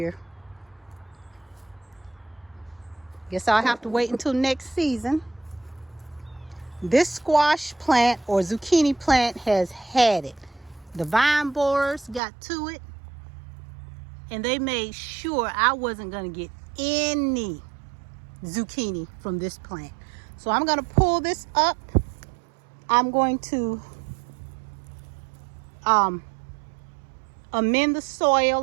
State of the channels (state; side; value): drops out; left; at 12.2 s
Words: Guess I'll have to wait until next season. This squash plant or zucchini plant has had it. The vine borers got to it, and they made sure I wasn't going to get any zucchini from this plant. So I'm going to pull this up. I'm going to amend the